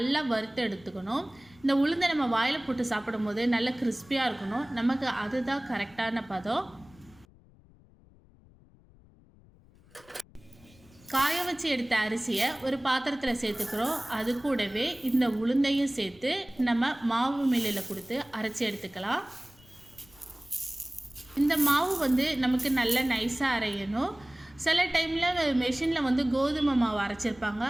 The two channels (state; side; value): noise; left; rumble, 26 dB below the sound